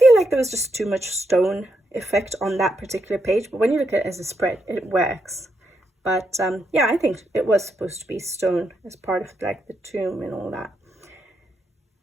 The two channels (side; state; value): both; normal; correlation 0.81